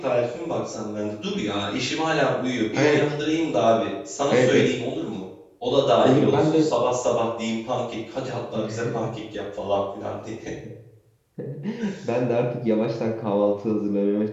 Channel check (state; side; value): identical; both; correlation 1.00